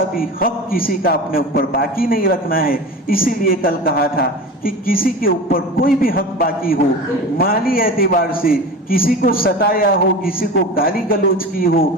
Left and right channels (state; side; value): normal; both; correlation 0.31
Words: بھی حق کسی کا اپنے اوپر باقی نہیں رکھنا ہے۔ اسی لیے کل کہا تھا کہ کسی کے اوپر کوئی بھی حق باقی ہو، مالی اعتبار سے کسی کو ستایا ہو، کسی کو گالی گلوچ کی ہو